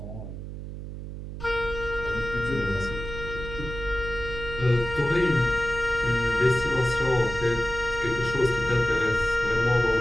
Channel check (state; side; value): noise; right; hum, 9 dB below the sound